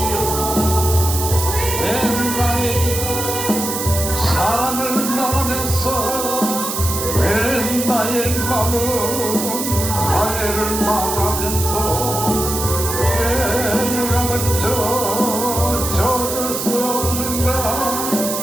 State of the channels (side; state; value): right; noise; hiss, 4 dB below the sound